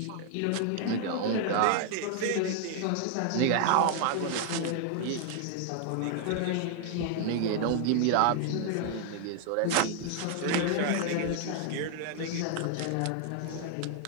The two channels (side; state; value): both; different; correlation 0.00